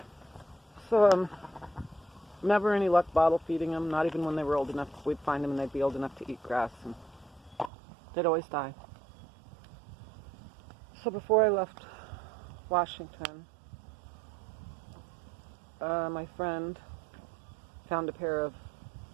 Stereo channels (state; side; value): drops out; left; at 7.7 s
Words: So never any luck bottle feeding them. Not even when they were old enough. We'd find them and they'd be old enough to eat grass, and they'd always die. So before I left Washington, my friend found a pair of